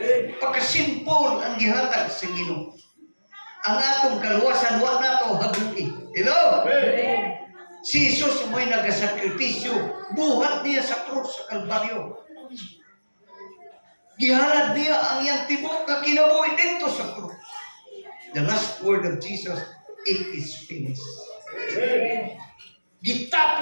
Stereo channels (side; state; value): both; inverted; correlation -1.00